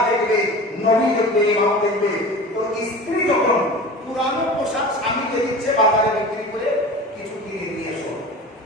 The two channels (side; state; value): both; normal; correlation 0.35